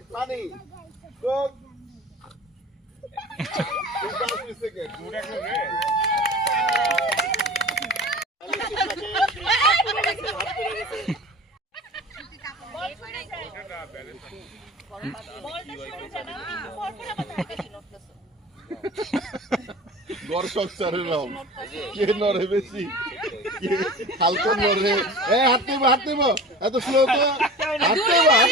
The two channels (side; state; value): both; normal; correlation 0.38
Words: পানি কোক দর্শক স্যারের নাম কে নড়ে বেশি হালকা নড়ে হাত নেব এত স্লো তো হাত নেব